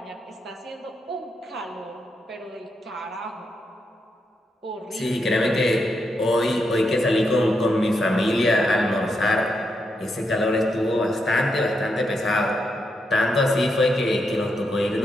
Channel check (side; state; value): both; normal; correlation 0.82